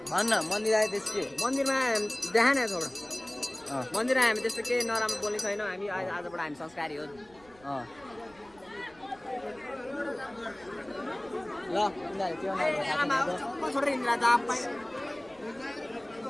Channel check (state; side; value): noise; right; rumble, 27 dB below the sound